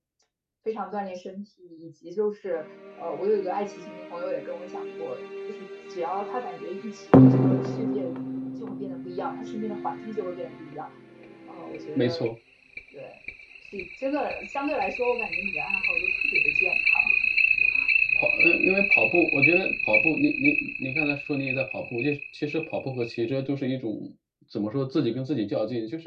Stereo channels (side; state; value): both; identical; correlation 1.00